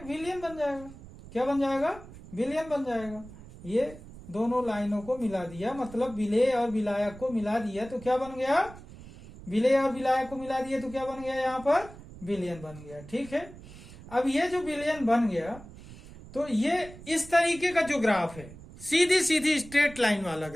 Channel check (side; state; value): right; noise; rumble, 17 dB below the sound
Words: विलयन बन जाएगा। क्या बन जाएगा? विलयन बन जाएगा। ये दोनों लाइनों को मिला दिया, मतलब विलेय और विलायक को मिला दिया तो क्या बन गया? विलेय और विलायक को मिला दिया तो क्या बन गया? यहाँ पर विलयन बन गया, ठीक है। अब ये जो विलयन बन गया, तो ये इस तरीके का जो ग्राफ है, सीधी सीधी स्ट्रेट लाइन वाला